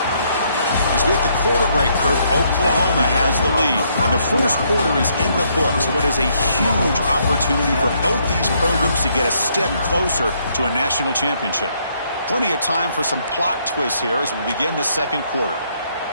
As we hit the quarter break, Kirk, Oklahoma has the lead. And the first quarter is in the books. What is a huge opportunity for both these programs to get a step closer to a national championship. Plenty of time for some plot twists here as we begin the second quarter.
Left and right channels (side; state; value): both; inverted; correlation -0.71